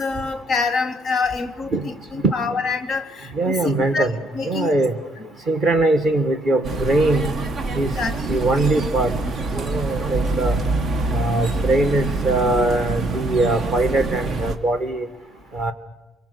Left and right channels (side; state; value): both; normal; correlation 0.68